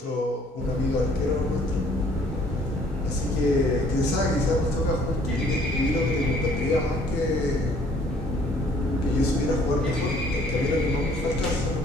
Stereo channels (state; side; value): normal; both; correlation 0.59